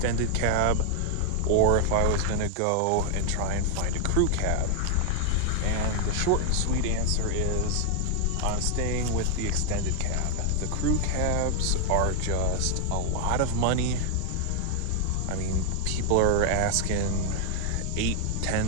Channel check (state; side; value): different; both; correlation 0.00